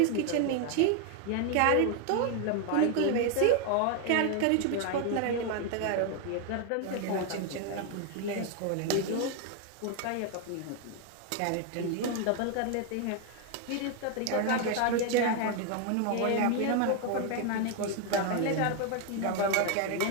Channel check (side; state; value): both; different; correlation 0.01